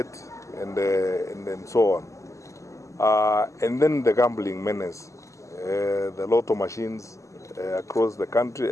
and so on. And then the gambling menace, the lotto machines across the county,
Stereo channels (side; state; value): right; late; 0.15 ms